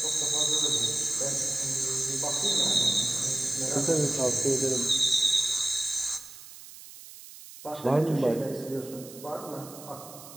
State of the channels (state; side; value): noise; right; hiss, 17 dB below the sound